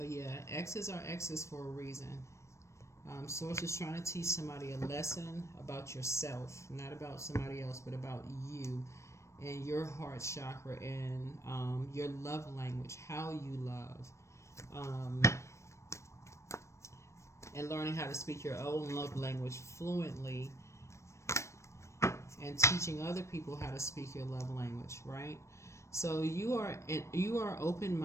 yeah, X's are X's for a reason. Source is trying to teach somebody a lesson about yourself, not about somebody else, but about you and your heart chakra and your love language, how you love, and learning how to speak your own love language fluently, and teaching other people how to speak your love language, right? So you are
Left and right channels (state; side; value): late; right; 0.14 ms